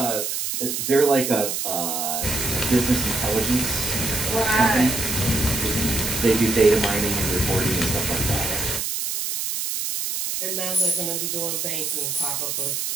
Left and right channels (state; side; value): noise; right; hiss, 2 dB below the sound